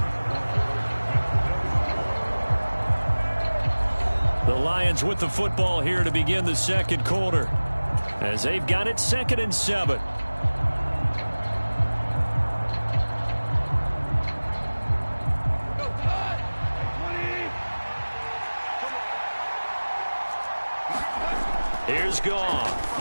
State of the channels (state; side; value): inverted; both; correlation -1.00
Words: The Lions with the football here to begin the second quarter, as they've got it 2nd and 7. Here's Goff.